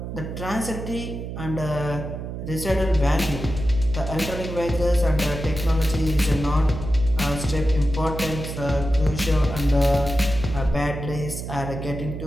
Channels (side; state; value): right; noise; hum, 7 dB below the sound